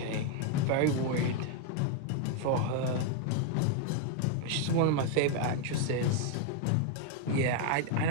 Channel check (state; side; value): different; both; correlation 0.00